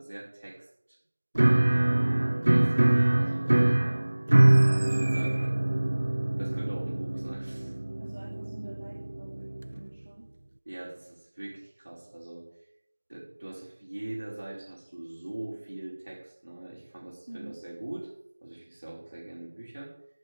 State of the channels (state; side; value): inverted; both; correlation -1.00